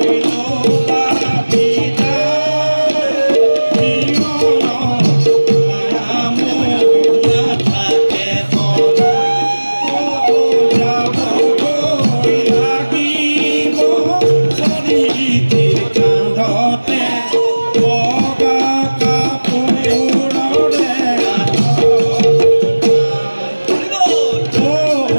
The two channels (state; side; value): inverted; both; correlation -1.00